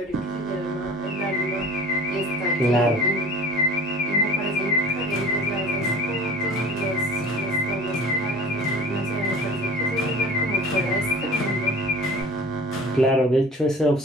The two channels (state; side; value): normal; both; correlation 0.42